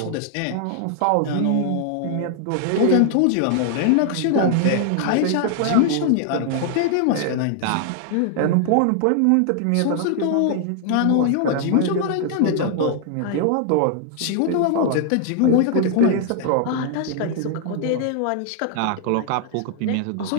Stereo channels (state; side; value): different; both; correlation 0.00